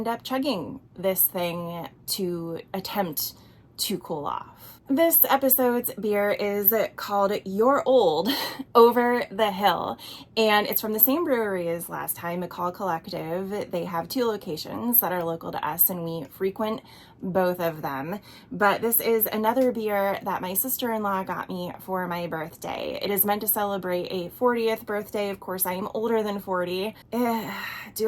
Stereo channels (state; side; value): identical; both; correlation 1.00